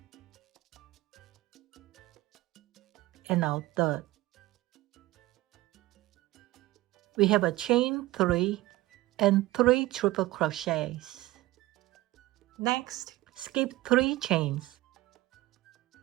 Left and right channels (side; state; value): left; quieter; 18.0 dB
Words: And our third. We have a chain 3 and 3 triple crochets. Next, skip 3 chains